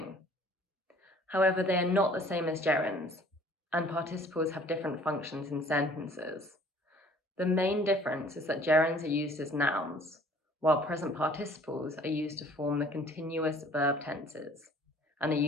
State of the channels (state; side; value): normal; both; correlation 0.54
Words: However, they are not the same as gerunds, and participles have different functions in sentences. The main difference is that gerunds are used as nouns, while present participles are used to form the continuous verb tenses. and are